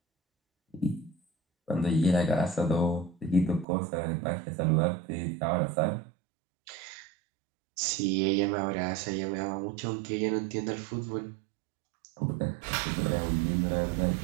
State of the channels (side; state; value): left; drops out; at 3.7 s